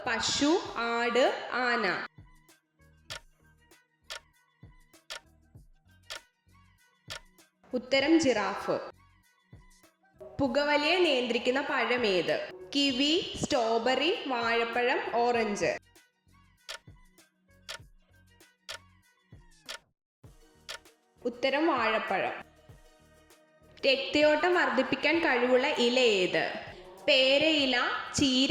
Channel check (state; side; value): identical; both; correlation 1.00